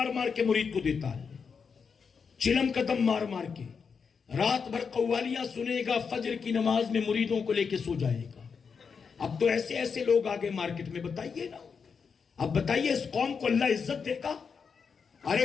مار کے مرید کو دیتا ہے, چلم کا دم مار مار کے, رات بھر قوالیاں سنے گا, فجر کی نماز میں مریدوں کو لے کے سو جائے گا. اب تو ایسے ایسے لوگ آگے مارکیٹ میں, بتائیے نا, اب بتائیے اس قوم کو اللہ عزت دے گا؟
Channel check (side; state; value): right; quieter; 5.9 dB